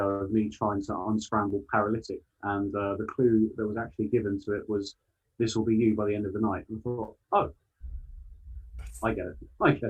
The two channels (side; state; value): both; identical; correlation 1.00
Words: of me trying to unscramble paralytic, and the clue that was actually given to it was, "This will be you by the end of the night." And I thought, oh, I get it.